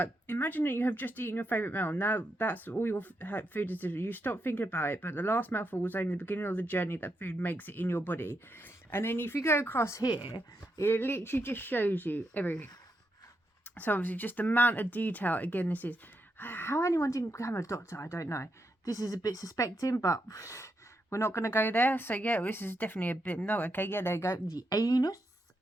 imagine that you have just eaten your favourite meal. Now that's all your food is. You stop thinking about it, but the last mouthful was only the beginning of the journey that food makes it in your body. And then if you go across here, it literally just shows you everything. So obviously just the amount of detail. Again, this is how anyone didn't become a doctor, I don't know. This is a bit suspecting, but we're not going to go there. So yeah, this is definitely a bit, no, okay, yeah, there you go. The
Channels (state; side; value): normal; both; correlation 0.83